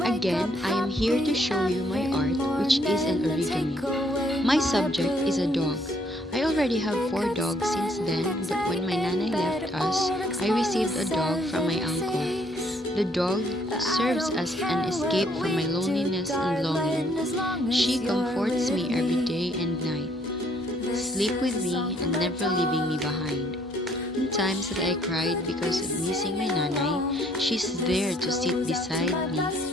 Again, I am here to show you my art, which is an origami. My subject is a dog. I already have 4 dogs since then, but when my nanay left us, I received a dog from my uncle. The dog serves as an escape from my loneliness and longing. She comforts me every day and night, sleep with me and never leaving me behind. In times that I cried because of missing my nanay, she's there to sit beside me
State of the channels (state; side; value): normal; both; correlation 0.66